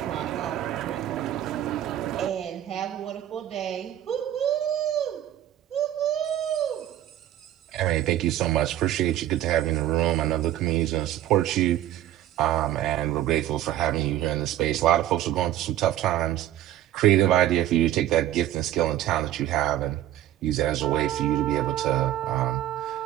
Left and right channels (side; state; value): left; quieter; 12.6 dB